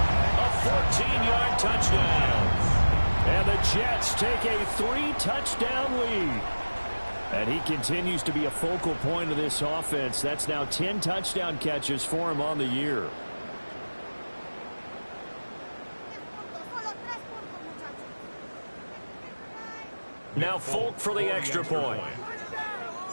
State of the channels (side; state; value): both; inverted; correlation -1.00